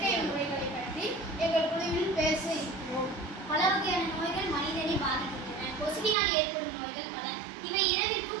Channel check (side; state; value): left; drops out; at 6.2 s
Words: முறைகளை பற்றி எங்கள் குழுவில் பேச இருக்கிறோம். பல வகையான நோய்கள் மனிதனை பாதிக்கின்றன. கொசுவினால் ஏற்படும் நோய்கள் பல. இவை இரவில்